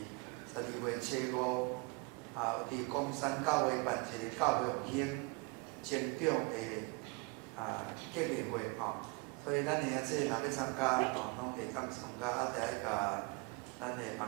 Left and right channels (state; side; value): quieter; left; 28.9 dB